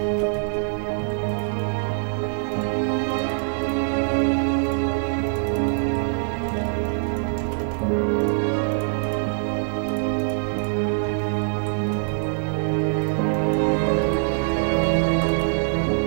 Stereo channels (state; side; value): silent; left; 59 dB below the other